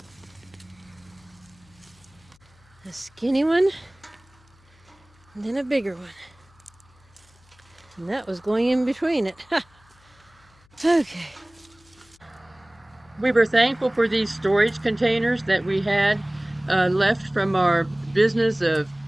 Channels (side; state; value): left; noise; hum, 30 dB below the sound